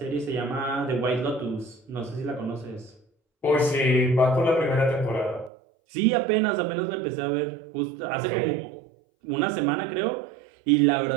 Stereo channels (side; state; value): left; drops out; at 5.5 s